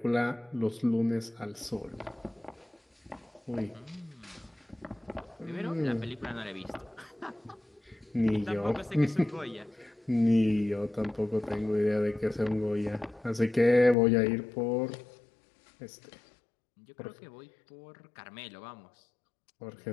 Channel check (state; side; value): drops out; right; at 14.0 s